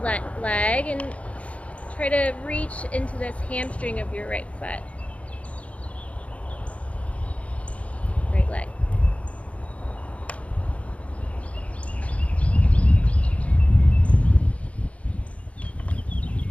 leg and try to reach into this hamstring of your right foot. Right leg.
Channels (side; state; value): right; late; 0.064 ms